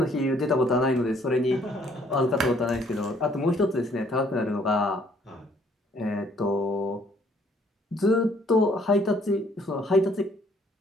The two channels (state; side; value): normal; both; correlation 0.63